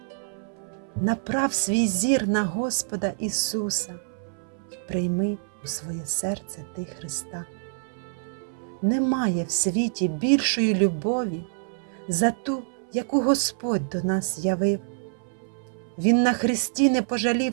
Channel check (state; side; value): silent; left; 61 dB below the other